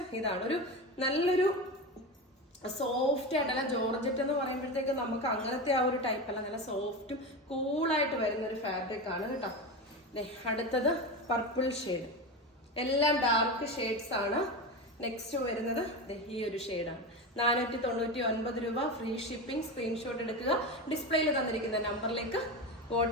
ഇതാണ് ഒരു നല്ലൊരു സോഫ്റ്റ് ആയിട്ടല്ല, ജോർജറ്റ് എന്ന് പറയുമ്പോഴത്തേക്ക് നമുക്ക് അങ്ങനത്തെ ആ ഒരു ടൈപ്പ് അല്ല, നല്ല സോഫ്റ്റും കൂളായിട്ട് വരുന്ന ഒരു ഫാബ്രിക് ആണ് കേട്ടോ. അടുത്തത് പർപ്പിൾ ഷെയ്ഡ്, എല്ലാം ഡാർക്ക് ഷെയ്ഡ്സ് ആണ്. നെക്സ്റ്റ് വരുന്നത് ഈ ഒരു ഷെയ്ഡാണ്. 499 രൂപ, ഫ്രീ ഷിപ്പിംഗ്. സ്ക്രീൻഷോട്ട് എടുക്കുക, ഡിസ്പ്ലേയിൽ തന്നിരിക്കുന്ന നമ്പറിലേക്ക്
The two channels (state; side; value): normal; both; correlation 0.21